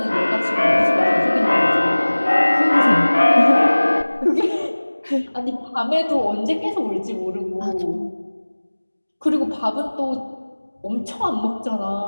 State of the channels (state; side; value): inverted; both; correlation -1.00